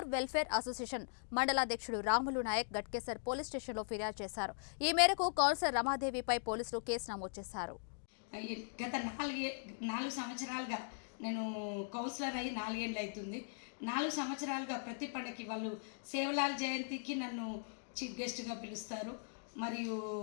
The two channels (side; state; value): right; silent; digital silence